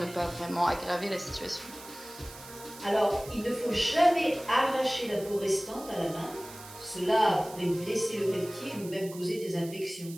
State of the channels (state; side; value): noise; right; hiss, 16 dB below the sound